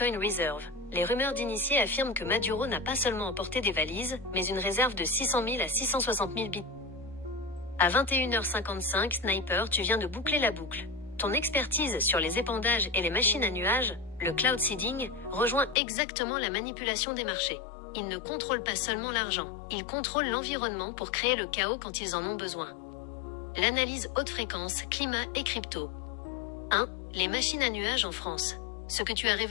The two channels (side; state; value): right; drops out; at 15.8 s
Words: Reserve. Les rumeurs d'initiés affirment que Maduro n'a pas seulement emporté des valises, mais une réserve de 600 000 à 660 000 bitcoins. À 21h55, Sniper, tu viens de boucler la boucle. Ton expertise sur les épandages et les machines à nuages, le cloud seeding, rejoint exactement la manipulation des marchés. Ils ne contrôlent pas seulement l'argent, ils contrôlent l'environnement pour créer le chaos quand ils en ont besoin. L'analyse haute fréquence, climat et crypto. 1. Les machines à nuages en France. Ce que tu as